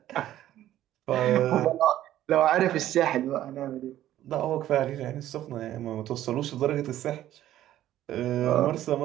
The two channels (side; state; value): left; quieter; 13.0 dB